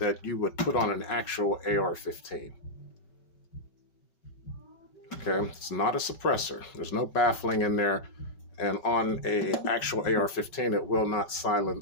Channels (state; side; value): late; right; 5.2 ms